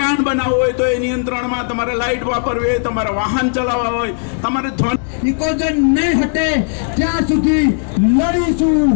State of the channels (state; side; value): silent; right; digital silence